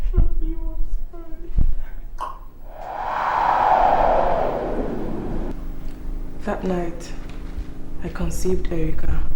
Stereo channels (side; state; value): both; identical; correlation 1.00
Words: That night, I conceived Iyke.